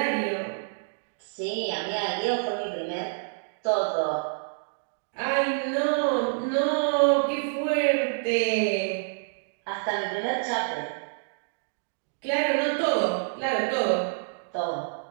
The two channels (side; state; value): left; silent; digital silence